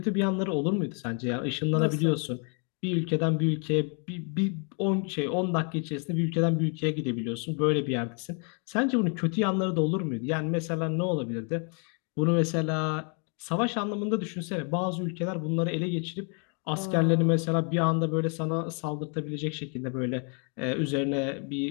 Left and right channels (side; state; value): right; quieter; 39.4 dB